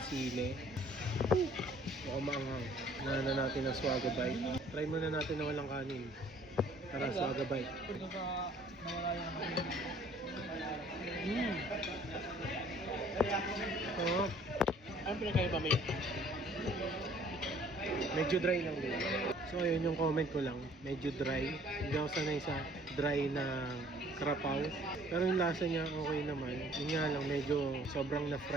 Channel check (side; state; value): both; normal; correlation 0.56